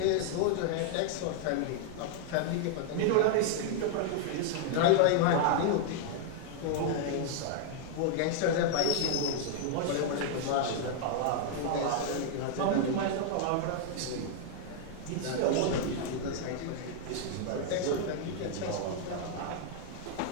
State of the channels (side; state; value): both; different; correlation 0.00